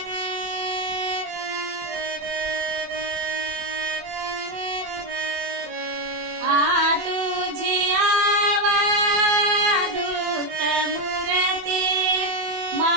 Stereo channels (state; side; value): late; left; 24 ms